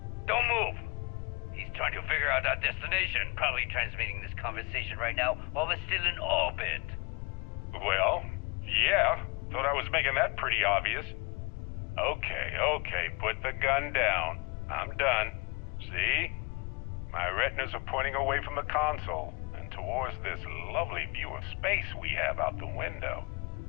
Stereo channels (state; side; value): quieter; right; 29.1 dB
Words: Don't move! He's trying to figure out our destination, probably transmitting this conversation right now while we're still in orbit. Well, yeah, thought I was making that pretty obvious. Okay, put the gun down. I'm done. See? My retinas are pointing away from the console and towards this lovely view of space we have out the window.